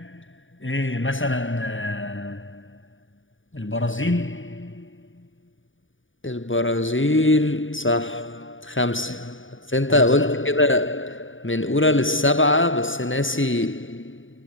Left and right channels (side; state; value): right; late; 0.57 ms